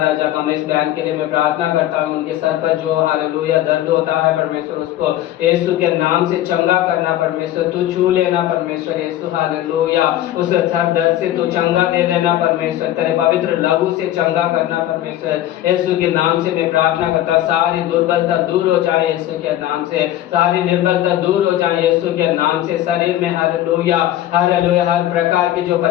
कमलेश बहन के लिए मैं प्रार्थना करता हूँ, उनके सर पर जो हालेलुया दर्द होता है परमेश्वर उसको यीशु के नाम से चंगा करना परमेश्वर, तू छू लेना परमेश्वर यीशु। हालेलुया उस सर दर्द से तू चंगा दे देना परमेश्वर, तेरे पवित्र लहू से चंगा करना परमेश्वर यीशु के नाम से मैं प्रार्थना करता। सारी दुर्बलता दूर हो जाए यीशु के नाम से, सारी निर्बलता दूर हो जाए यीशु के नाम से। शरीर में हालेलुया हालेलुया हर प्रकार की जो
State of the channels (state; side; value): quieter; right; 13.2 dB